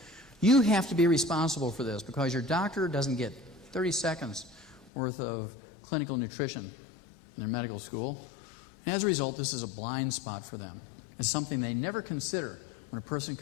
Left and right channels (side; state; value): right; drops out; at 4.9 s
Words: you have to be responsible for this, because your doctor doesn't get 30 seconds worth of clinical nutrition in their medical school. And as a result, this is a blind spot for them. It's something they never consider when a person